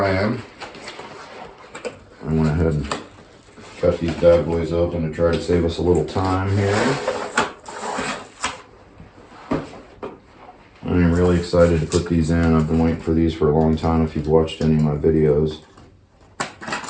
am. I went ahead and cut these bad boys open to try to save us a little time here. I am really excited to put these in. I've been waiting for these for a long time if you've watched any of my videos.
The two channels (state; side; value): identical; both; correlation 1.00